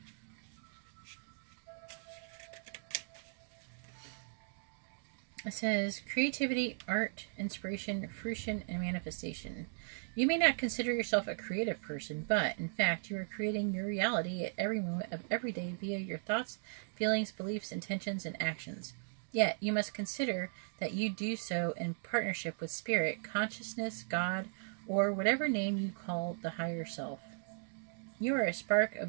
It says, creativity, art, inspiration, fruition, and manifestation. You may not consider yourself a creative person, but, in fact, you are creating your reality at every moment of every day via your thoughts, feelings, beliefs, intentions, and actions. Yet, you must consider that you do so in partnership with Spirit, Consciousness, God, or whatever name you call the higher self. You are a spark of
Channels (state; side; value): silent; left; digital silence